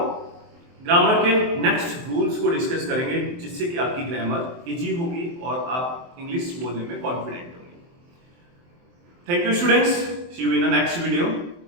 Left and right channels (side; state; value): left; late; 23 ms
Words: ग्रामर के नेक्स्ट रूल्स को डिस्कस करेंगे, जिससे कि आपकी ग्रामर इजी होगी और आप इंग्लिश बोलने में कॉन्फिडेंट होंगे। Thank you students, see you in the next video.